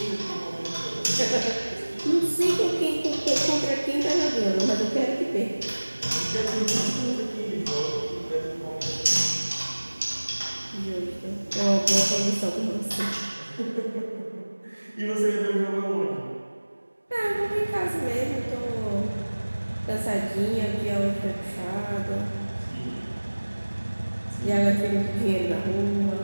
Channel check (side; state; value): both; inverted; correlation -1.00